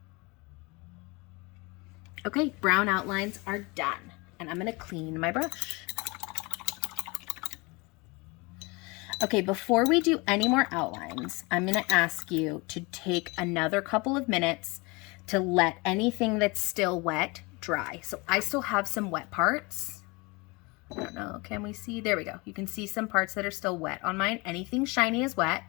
Okay, brown outlines are done. And I'm gonna clean my brush. Okay, before we do any more outlines, I'm gonna ask you to take another couple of minutes to let anything that's still wet dry. So I still have some wet parts. I don't know, can we see? There we go. You can see some parts that are still wet on mine. Anything shiny is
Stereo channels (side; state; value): right; quieter; 26.5 dB